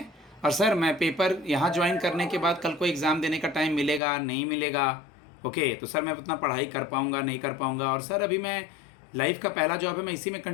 और सर मैं पेपर यहाँ ज्वाइन करने के बाद कल को एग्ज़ाम देने का टाइम मिलेगा नहीं मिलेगा. ओके, तो सर मैं उतना पढ़ाई कर पाऊँगा नहीं कर पाऊँगा. और सर अभी मैं लाइफ का पहला जॉब है, मैं इसी में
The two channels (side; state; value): right; drops out; at 4.0 s